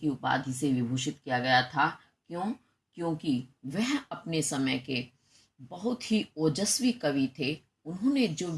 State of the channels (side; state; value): both; identical; correlation 1.00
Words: उपाधि से विभूषित किया गया था। क्यों? क्योंकि वह अपने समय के बहुत ही ओजस्वी कवि थे। उन्होंने जो